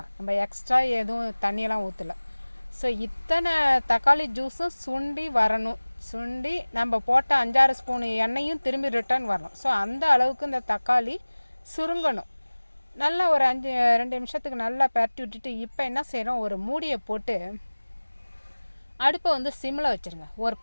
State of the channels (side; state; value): both; inverted; correlation -1.00